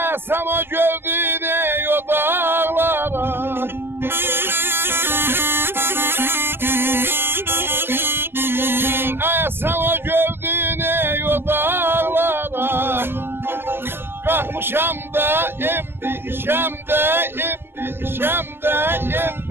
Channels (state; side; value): late; left; 0.10 ms